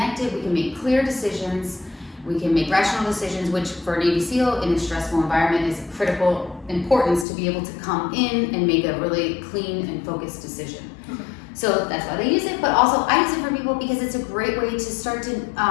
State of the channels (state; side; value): drops out; right; at 7.2 s